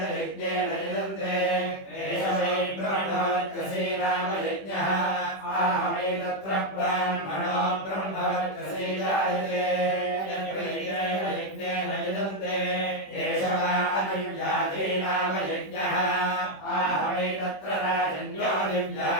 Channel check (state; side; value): late; right; 21 ms